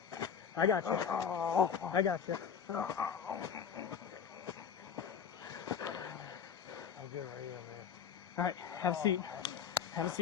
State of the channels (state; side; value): quieter; right; 7.3 dB